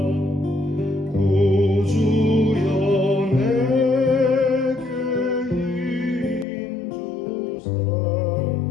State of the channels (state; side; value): drops out; right; at 6.5 s